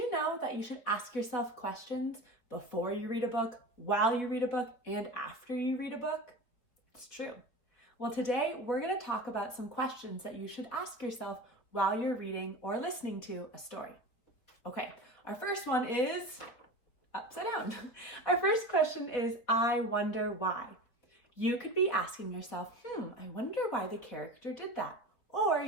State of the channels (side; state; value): right; late; 4.3 ms